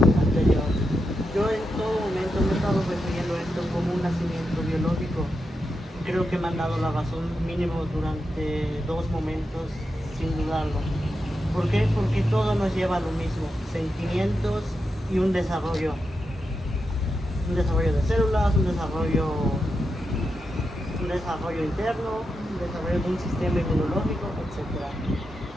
anterior. Yo en todo momento me he estado refiriendo a esto como un nacimiento biológico. Creo que me han dado la razón mínimo durante 2 momentos, sin dudarlo. ¿Por qué? Porque todo nos lleva a lo mismo, sentimientos y un desarrollo. Un desarrollo de células, un desarrollo interno, un desarrollo de un sistema inmunológico, etc.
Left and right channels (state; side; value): normal; both; correlation 0.87